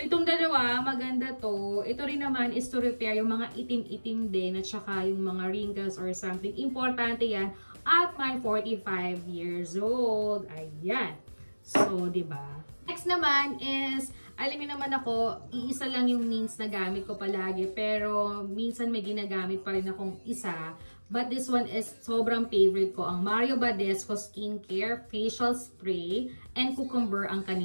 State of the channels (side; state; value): both; inverted; correlation -1.00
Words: itong dalawa, maganda to. Ito rin naman is to repair yung mga itim-itim din at saka yung mga wrinkles or something. Importante yan at my 45 years old. Ayan. So, diba? Next naman is, alam niyo naman ako, iisa lang yung means na gamit ko palagi. Pero, minsan may ginagamit pa rin akong isa. But this one is sobrang favorite ko. Ang Mario Badescu Skincare Facial Spray and Cucumber ang